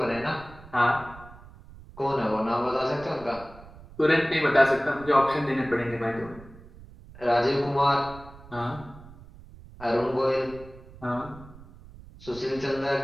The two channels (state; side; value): noise; right; rumble, 19 dB below the sound